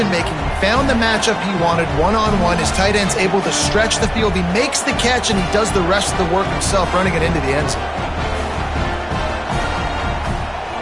He found the matchup he wanted one-on-one. His tight end's able to stretch the field. He makes the catch, and he does the rest of the work himself, running it into the end zone.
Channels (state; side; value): identical; both; correlation 1.00